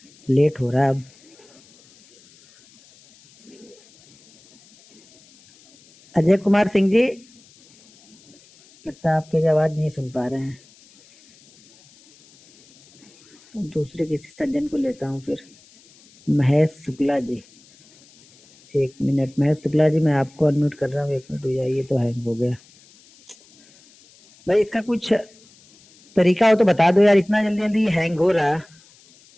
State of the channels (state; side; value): noise; left; hiss, 28 dB below the sound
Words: लेट हो रहा है अब। अजय कुमार सिंह जी, लगता है आपकी आवाज नहीं सुन पा रहे हैं। दूसरे किसी सज्जन को लेता हूँ फिर। महेश शुक्ला जी, 1 मिनट। महेश शुक्ला जी, मैं आपको अनम्यूट कर रहा हूँ, 1 मिनट हो जाए। ये तो हैंग हो गया भाई, इसका कुछ तरीका हो तो बता दो यार, इतना जल्दी जल्दी हैंग हो रहा।